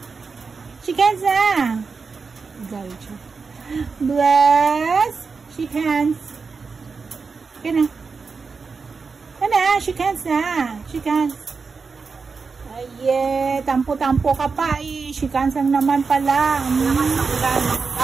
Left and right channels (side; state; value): left; quieter; 4.9 dB